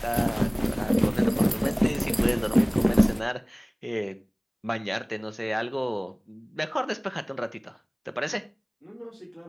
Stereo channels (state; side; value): identical; both; correlation 1.00